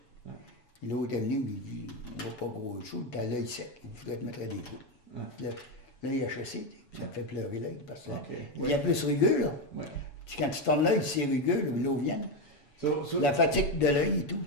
Ouais. Puis l'autre est venu, il me dit, on va pas gros chaud, t'as l'œil sec, il faudrait te mettre à des coups. Ouais. Là, il a chassé, ça me fait pleurer l'œil, parce que Ok. il y a plus rugueux, là. Ouais. Quand tu tournes l'œil, c'est rugueux, là, l'eau vient. So, La fatigue de l'œil et tout.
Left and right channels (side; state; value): right; late; 7.1 ms